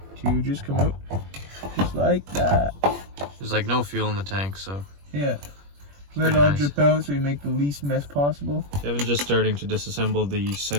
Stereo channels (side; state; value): left; late; 21 ms